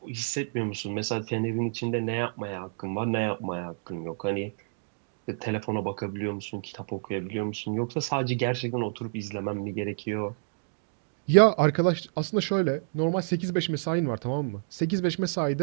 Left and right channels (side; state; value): left; silent; digital silence